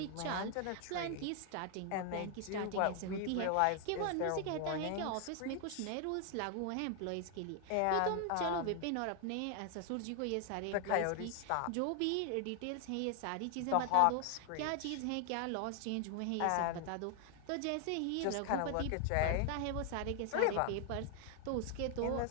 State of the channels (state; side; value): different; both; correlation 0.00